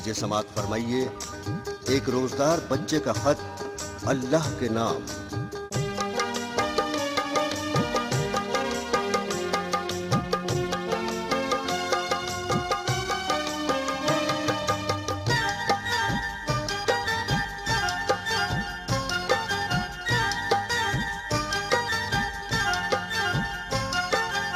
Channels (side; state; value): both; identical; correlation 1.00